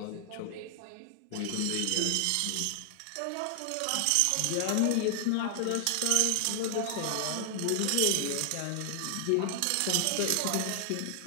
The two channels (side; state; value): both; different; correlation 0.00